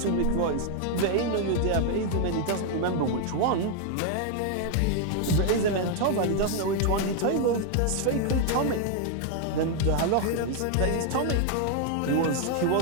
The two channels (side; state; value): both; different; correlation 0.00